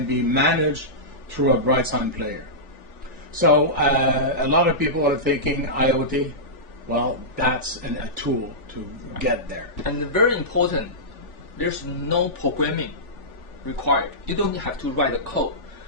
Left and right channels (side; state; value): right; late; 3.4 ms